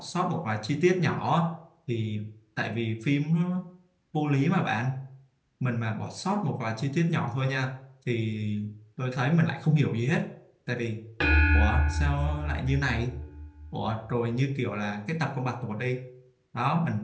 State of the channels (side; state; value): both; identical; correlation 1.00